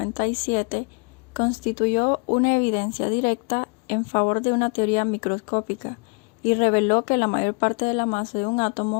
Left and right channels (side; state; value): right; quieter; 34.6 dB